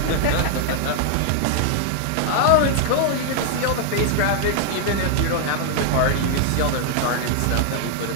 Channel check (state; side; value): different; both; correlation 0.00